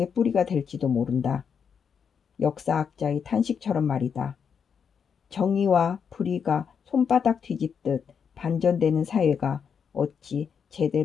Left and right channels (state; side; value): quieter; right; 6.8 dB